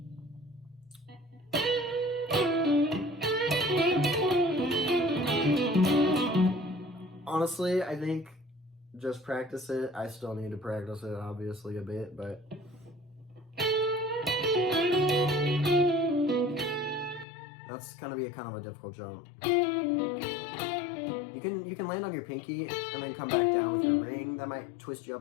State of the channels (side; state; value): right; drops out; at 17.2 s